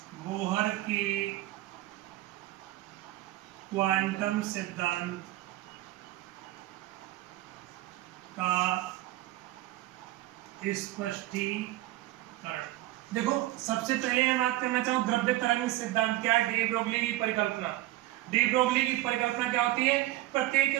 बोहर के क्वांटम सिद्धांत का स्पष्टीकरण। देखो, सबसे पहले मैं बात करना चाहूँ द्रव्य तरंग सिद्धांत क्या है। डी ब्रोगली की परिकल्पना। डी ब्रोगली की परिकल्पना क्या होती है?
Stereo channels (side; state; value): left; quieter; 16.7 dB